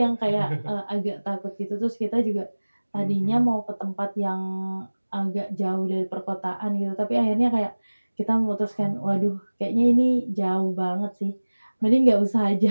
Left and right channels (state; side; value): inverted; both; correlation -1.00